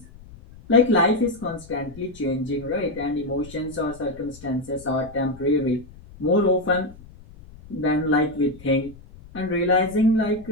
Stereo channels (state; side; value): noise; left; rumble, 20 dB below the sound